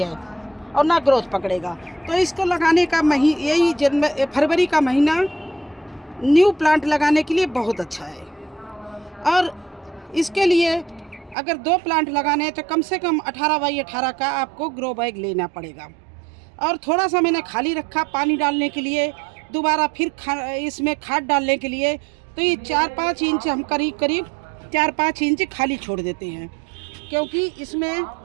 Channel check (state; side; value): drops out; left; at 11.4 s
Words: है और ना ग्रोथ पकड़ेगा। तो इसको लगाने का यही फरवरी का महीना न्यू प्लांट लगाने के लिए बहुत अच्छा है। और इसके लिए अगर 2 प्लांट लगाने हैं तो कम से कम 18 बाई 18 का आपको ग्रो बैग लेना पड़ेगा। और थोड़ा सा मैंने खाली रखा पानी डालने के लिए, दोबारा फिर इसमें खाद डालने के लिए। तो ये 4-5 इंच हम करीब 4-5 इंच खाली छोड़ देते हैं, क्योंकि इसमें